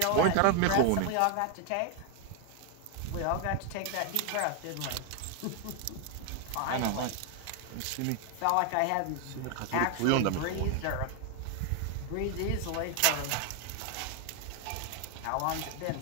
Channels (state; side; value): different; both; correlation 0.01